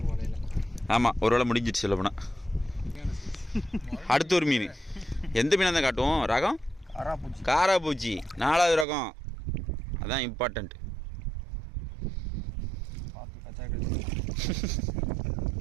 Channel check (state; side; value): drops out; left; at 8.8 s